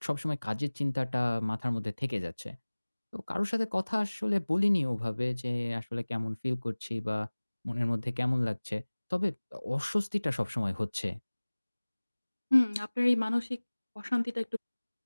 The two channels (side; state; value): both; inverted; correlation -1.00